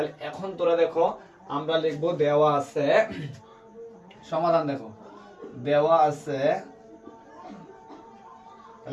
এখন তোরা দেখো আমরা লিখবো দেওয়া আছে সমাধান। দেখো দেওয়া আছে,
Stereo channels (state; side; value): identical; both; correlation 1.00